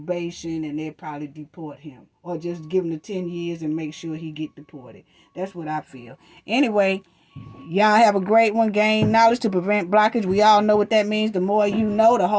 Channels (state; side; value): identical; both; correlation 1.00